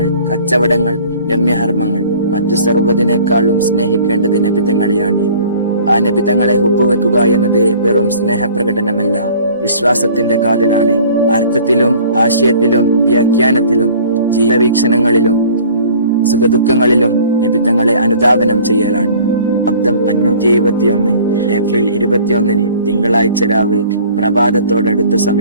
കച്ചവടങ്ങൾ, രമ്യഹർമ്മങ്ങൾ, മറ്റു സർവ്വതിനേക്കാളും സ്നേഹിക്കേണ്ടത് നബിതങ്ങളെയാണ്. ആ നബിതങ്ങളെ ഹുബ്ബുവെക്കുക എന്നത് വെറും സ്നേഹപ്രകടനമല്ല, വിശ്വാസത്തിന്റെ കാതലാണ്. അർത്ഥത്തിലും ആശയത്തിലും വ്യാഖ്യാനത്തിലും ജീവിതവീക്ഷണങ്ങളിലും സുഖദുഃഖങ്ങളിലും നബിതങ്ങളെ അനുധാവനം ചെയ്യലാണ്. ശബ്ദം 571 ഏപ്രിൽ 21 തിങ്കളാഴ്ച രാവ് പ്രഭാതത്തോടടുത്ത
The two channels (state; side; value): inverted; both; correlation -0.50